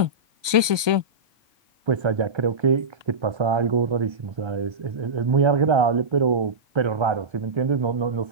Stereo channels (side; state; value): left; late; 1.2 ms